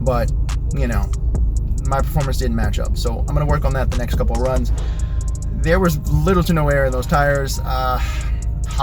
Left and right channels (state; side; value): identical; both; correlation 1.00